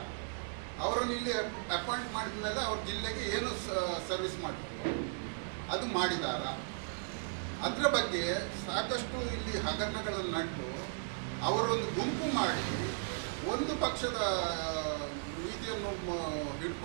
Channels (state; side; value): silent; left; digital silence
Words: ಅವರನ್ನು ಇಲ್ಲಿ ಅಪಾಯಿಂಟ್ ಮಾಡಿದ ಮೇಲೆ ಅವ್ರ ಜಿಲ್ಲೆಗೆ ಏನು ಸರ್ವಿಸ್ ಮಾಡಿದ್ರು ಅದು ಮಾಡಿದಾರ? ಅದರ ಬಗ್ಗೆ ಸಾಕಷ್ಟು ಇಲ್ಲಿ ಹಗರಣಗಳನ್ನು ನಟ್ಟು ಅವರೊಂದು ಗುಂಪು ಮಾಡಿ ಒಂದು ಪಕ್ಷದ ನೀತಿಯನ್ನು